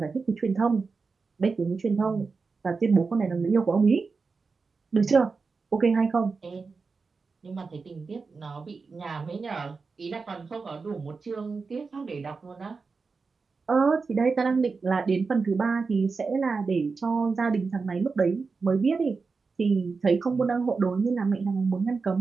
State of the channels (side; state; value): left; quieter; 4.6 dB